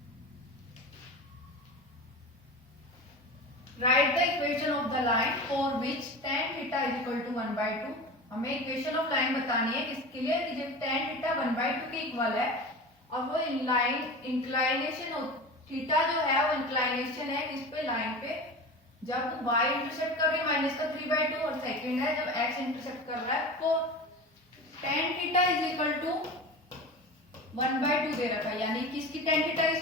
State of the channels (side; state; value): both; normal; correlation 0.31